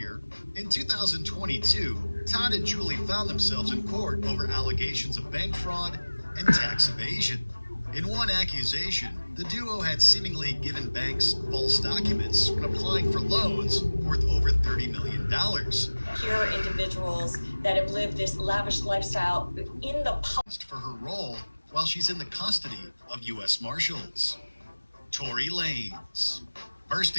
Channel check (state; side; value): inverted; both; correlation -1.00